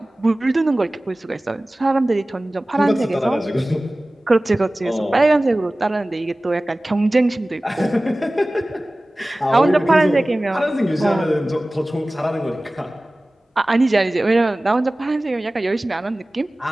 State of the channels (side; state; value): both; normal; correlation 0.97